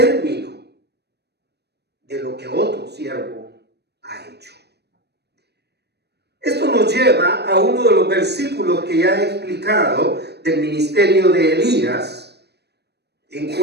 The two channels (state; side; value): late; left; 0.48 ms